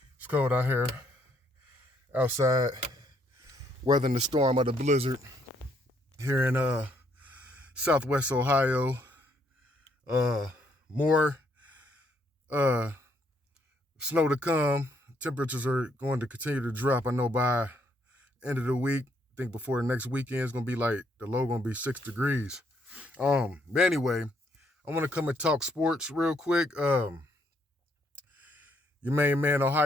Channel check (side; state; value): both; normal; correlation 0.71